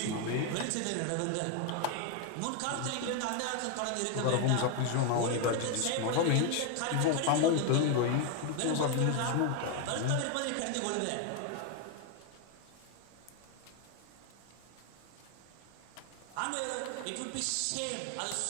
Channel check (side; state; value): both; different; correlation 0.01